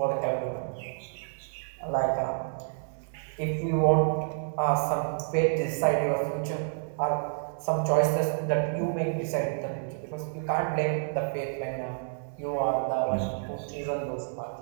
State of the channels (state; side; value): silent; left; 58 dB below the other